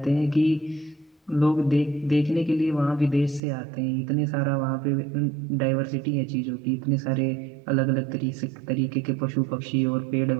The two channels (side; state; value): left; drops out; at 3.4 s